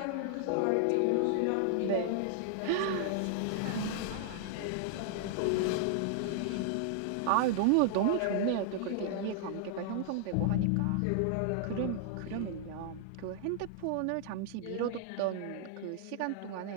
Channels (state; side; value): different; both; correlation -0.01